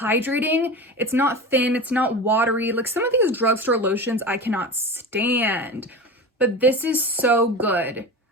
It's not thin, it's not watery. Like, some of these drugstore lotions I cannot stand, but this is so good.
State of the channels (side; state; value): both; normal; correlation 0.28